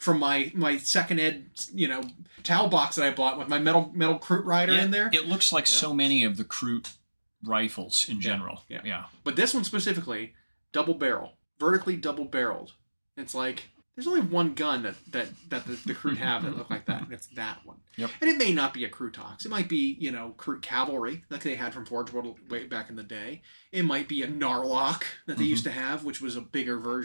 my second ed, Tau box that I bought with my metal Kroot rider in there. It looks like so many of the Kroot rifles in general. Yeah. But this one specifically, double barrel. vertically double-barreled. It's like there's only one gun that the Kroot have that look like that, and it's that one. Yep. And it may not be a Krootox. It might be, Kroot Cavalry, like they had from Forge World way back in the day. It might be a Narlock that they used to have, which was a bigger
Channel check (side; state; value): both; inverted; correlation -1.00